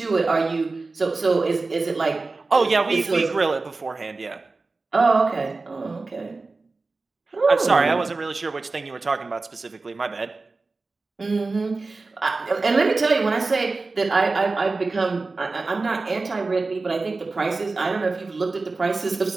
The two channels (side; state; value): left; quieter; 3.7 dB